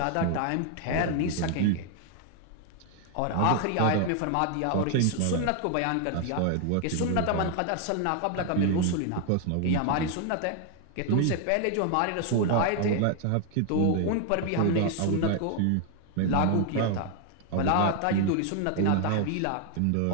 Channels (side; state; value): both; different; correlation 0.00